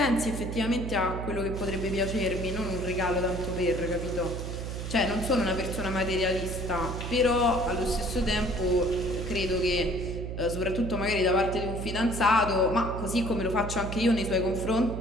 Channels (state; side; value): noise; right; hum, 6 dB below the sound